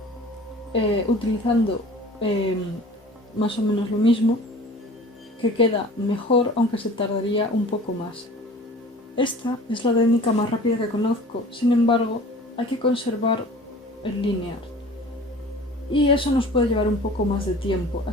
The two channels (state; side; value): normal; both; correlation 0.44